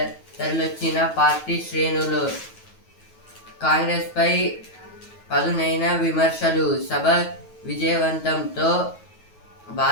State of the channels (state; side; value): late; right; 9.3 ms